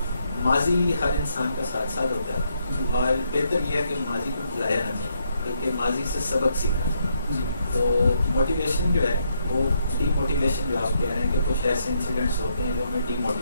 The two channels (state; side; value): inverted; both; correlation -0.76